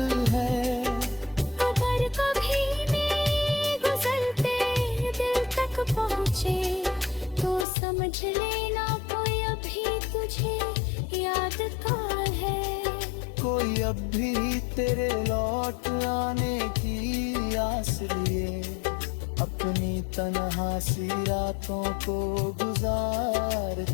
है। अगर कभी मैं गुजरते दिल तक पहुँचे तो समझ लेना कोई अभी तुझे याद का है। कोई अब भी तेरे लौट आने की आस लिए, अपनी तन्हा सी रातों को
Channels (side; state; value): right; drops out; at 7.7 s